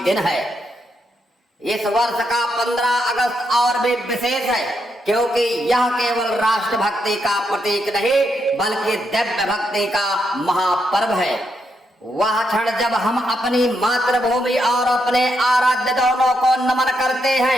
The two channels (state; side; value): normal; both; correlation 0.80